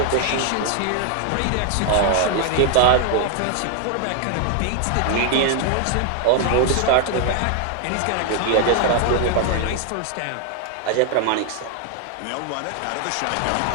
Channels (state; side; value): different; both; correlation 0.01